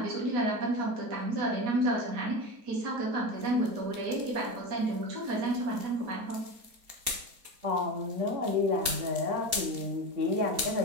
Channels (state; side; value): late; left; 4.2 ms